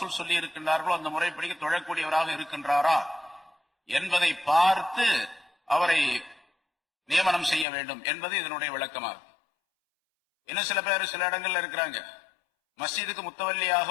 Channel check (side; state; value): right; drops out; at 7.7 s